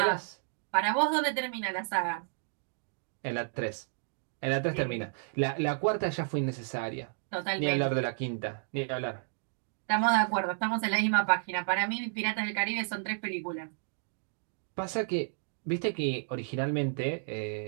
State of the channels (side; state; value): left; silent; digital silence